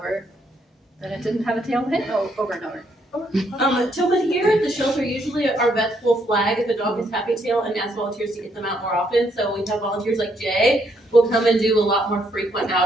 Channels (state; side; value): normal; both; correlation 0.73